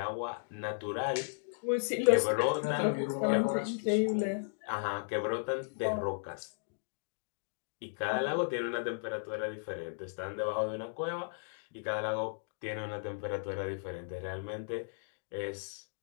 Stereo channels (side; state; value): right; silent; digital silence